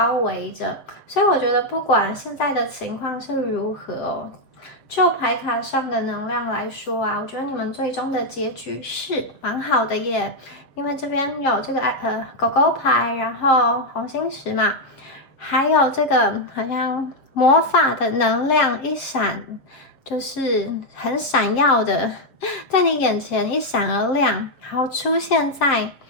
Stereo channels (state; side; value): late; right; 7.3 ms